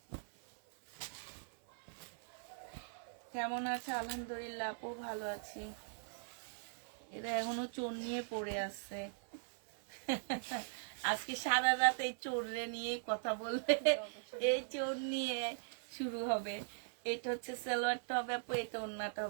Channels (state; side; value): silent; left; 51 dB below the other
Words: কেমন আছে? আলহামদুলিল্লাহ আপু, ভালো আছি। এরা এখনো চোর নিয়ে পড়ে আছে। আজকে সারা রাত এই চোররে নিয়ে কথা বলবে, এই চোর নিয়ে শুরু হবে। এটা হচ্ছে সালোয়ারটা হবে আপু, এটা ওন্নাটা